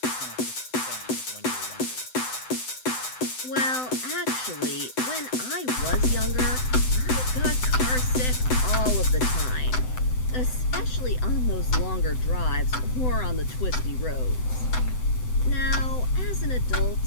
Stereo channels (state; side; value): late; right; 7.9 ms